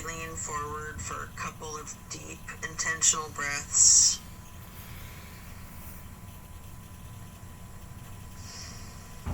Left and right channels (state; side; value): identical; both; correlation 1.00